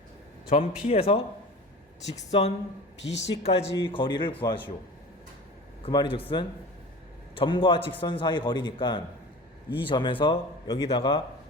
점 P에서 직선 BC까지 거리를 구하시오. 그 말이 즉슨 점과 직선 사이 거리니까 이 점에서 여기다가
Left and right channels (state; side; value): normal; both; correlation 0.36